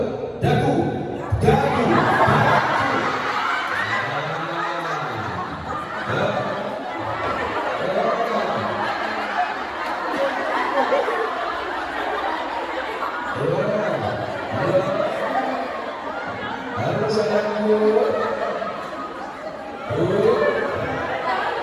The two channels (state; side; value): identical; both; correlation 1.00